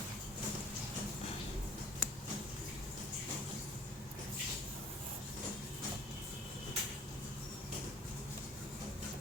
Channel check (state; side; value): normal; both; correlation 0.51